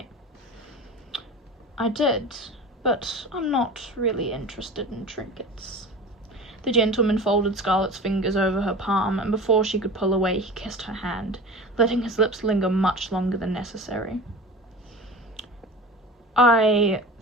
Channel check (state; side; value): normal; both; correlation 0.34